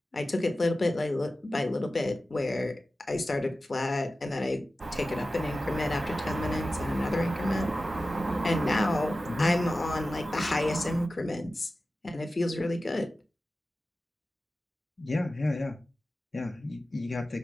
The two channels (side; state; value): both; normal; correlation 0.94